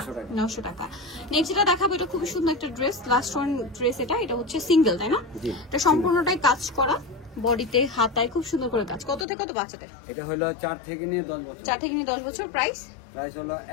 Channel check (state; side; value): drops out; right; at 9.2 s